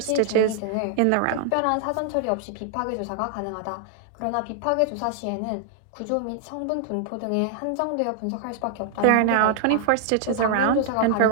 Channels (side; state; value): both; different; correlation 0.00